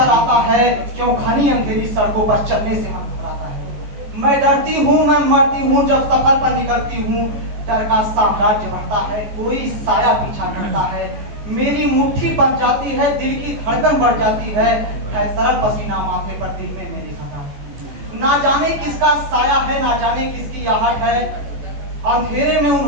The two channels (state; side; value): late; left; 14 ms